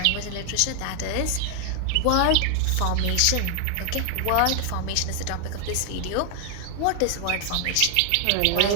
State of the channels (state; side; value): different; both; correlation 0.00